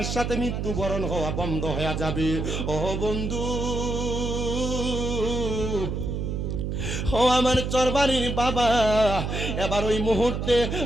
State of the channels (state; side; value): noise; right; hum, 2 dB below the sound